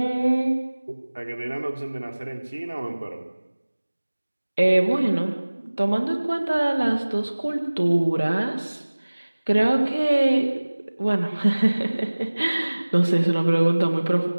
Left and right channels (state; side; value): inverted; both; correlation -1.00